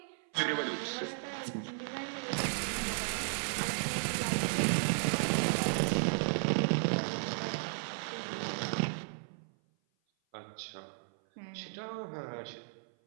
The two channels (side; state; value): left; silent; 55 dB below the other